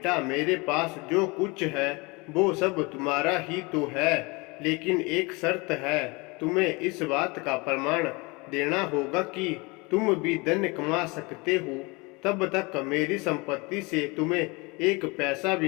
मेरे पास जो कुछ है वो सब तुम्हारा ही तो है, लेकिन एक शर्त है। तुम्हें इस बात का प्रमाण देना होगा कि तुम भी धन कमा सकते हो। तब तक मेरी संपत्ति से तुम्हें एक पैसा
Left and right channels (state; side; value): quieter; right; 26.6 dB